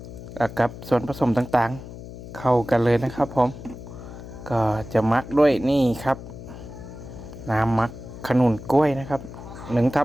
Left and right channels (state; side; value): noise; left; hum, 13 dB below the sound